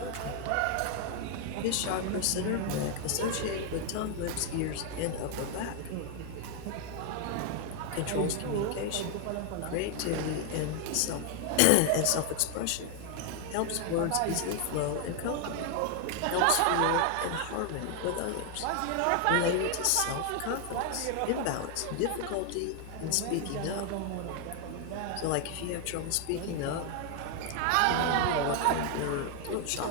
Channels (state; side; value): different; both; correlation 0.00